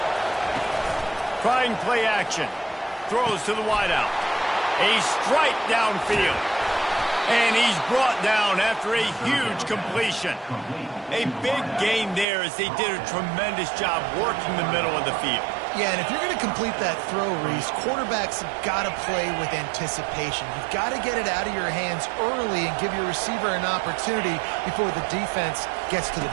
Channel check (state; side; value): drops out; left; at 12.2 s